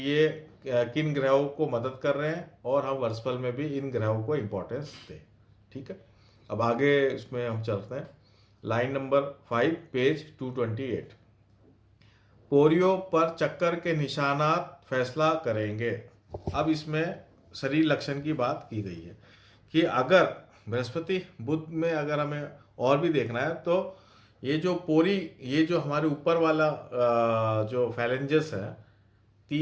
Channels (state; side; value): identical; both; correlation 1.00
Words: ये किन ग्रहों को मदद कर रहे हैं और हम वर्षफल में भी इन ग्रहों को इंपॉर्टेंस दें, ठीक है। अब आगे इसमें हम चलते हैं, लाइन नंबर 5 पेज 228। पोरियो पर चक्कर के निशानात फैसला करेंगे। अब इसमें शरीर लक्षण की बात की गई है कि अगर बृहस्पति बुध में अगर हमें और भी देखना है तो ये जो ये जो हमारे ऊपर वाला जो फैलेंजेस है,